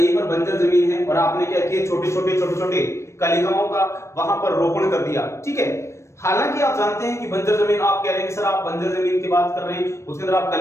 पर बंजर जमीन है और आपने क्या किया, छोटे छोटे कलिकाओं का वहां पर रोपण कर दिया। ठीक है, हालांकि आप जानते हैं कि बंजर जमीन, आप कह रहे हैं कि सर आप बंजर जमीन की बात कर रहे हैं, उसके अंदर आप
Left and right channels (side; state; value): right; late; 0.13 ms